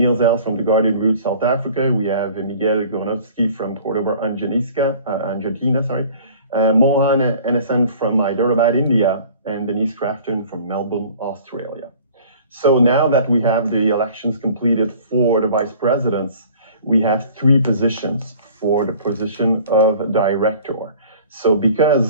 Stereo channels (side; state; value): both; inverted; correlation -0.49